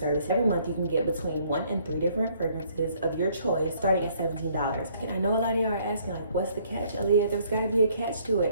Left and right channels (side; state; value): both; inverted; correlation -0.63